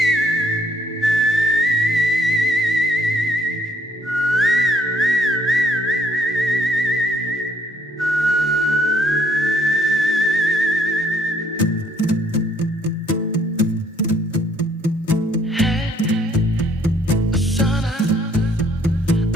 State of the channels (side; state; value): both; normal; correlation 0.63